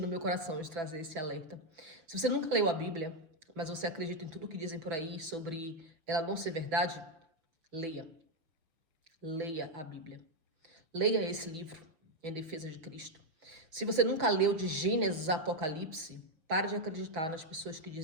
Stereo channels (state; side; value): late; left; 6.0 ms